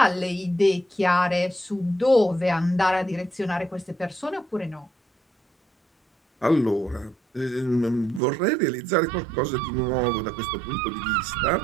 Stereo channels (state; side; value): drops out; left; at 8.2 s